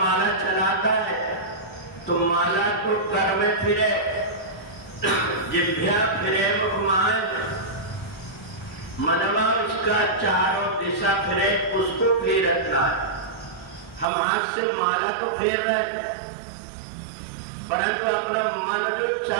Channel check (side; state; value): left; drops out; at 14.1 s